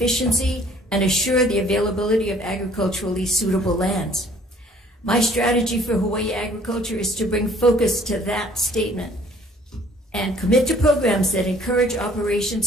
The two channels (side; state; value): both; normal; correlation 0.57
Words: and assure the availability of agriculturally suitable lands." My strategy for Hawaii agriculture is to bring focus to that statement and commit to programs that encourage